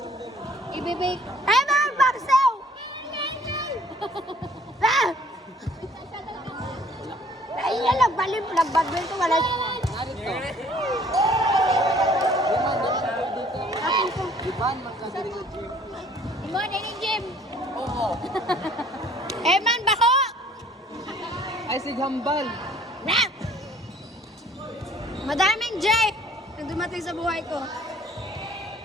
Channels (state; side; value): normal; both; correlation 0.56